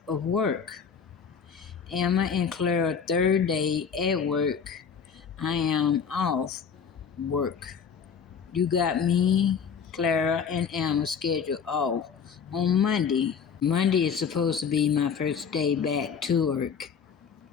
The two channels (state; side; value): quieter; right; 6.7 dB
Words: of work. Emma and Clara third day at work. I am off work. You got me, Clara, and Emma scheduled off on Monday. Monday is supposed to be my first day back to work.